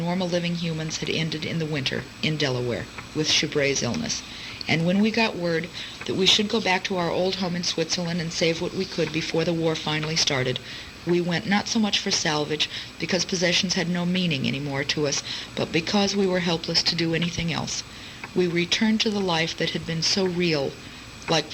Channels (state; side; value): identical; both; correlation 1.00